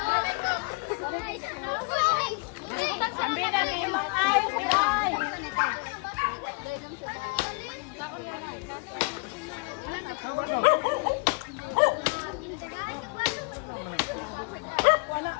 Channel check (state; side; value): quieter; right; 33.0 dB